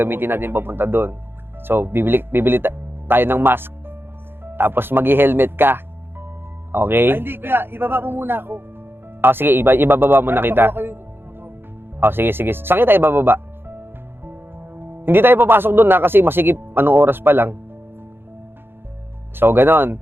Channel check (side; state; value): left; late; 0.10 ms